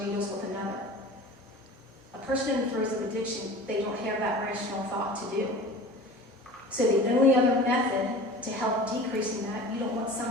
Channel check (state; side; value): normal; both; correlation 0.39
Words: needles with another. A person in throes of addiction, they don't have that rational thought to do. So the only other method to help decreasing that, you don't want